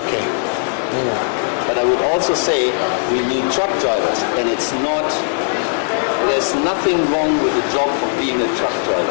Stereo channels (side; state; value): right; silent; digital silence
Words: But I would also say we need truck drivers, and there's nothing wrong with the job of being a truck